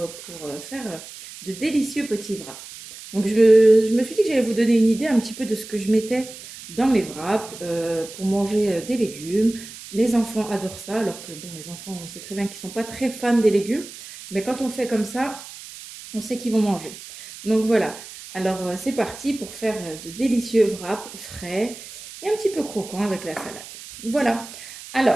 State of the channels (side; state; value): right; noise; hiss, 15 dB below the sound